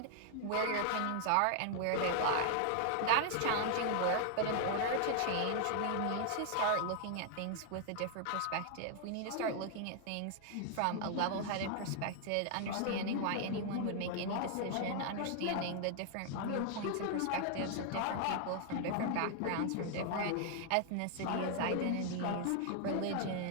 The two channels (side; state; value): both; different; correlation 0.00